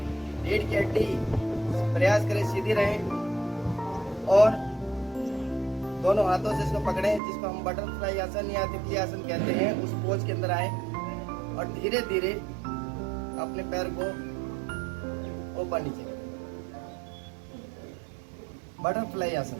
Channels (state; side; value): drops out; left; at 7.2 s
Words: रीढ़ की हड्डी प्रयास करें सीधी रहे और दोनों हाथों से इसको पकड़ें, जिसको हम बटरफ्लाई आसन या तितली आसन कहते हैं, उस पोज के अंदर आए और धीरे धीरे अपने पैर को ऊपर नीचे करें। बटरफ्लाई आसन